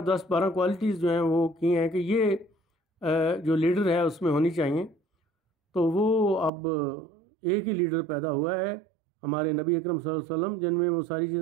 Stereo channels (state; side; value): drops out; left; at 6.5 s